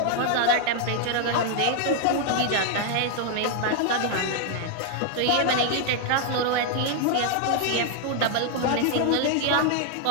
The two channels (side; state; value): both; different; correlation 0.00